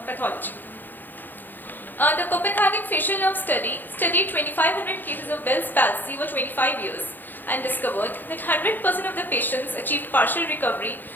pathology. The Copenhagen facial nerve study studied 2,500 cases of Bell's palsy over 25 years and discovered that 100% of the patients achieved partial recovery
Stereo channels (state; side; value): late; right; 0.089 ms